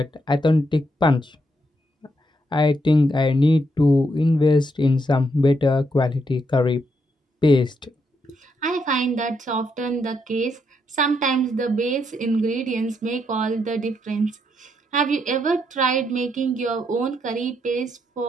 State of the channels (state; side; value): normal; both; correlation 0.78